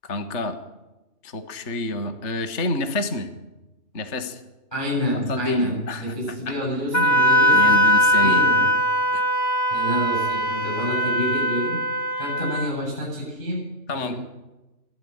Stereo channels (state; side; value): late; right; 3.3 ms